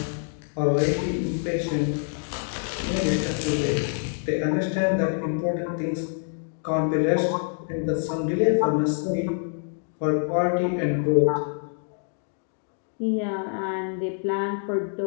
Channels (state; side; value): silent; right; 61 dB below the other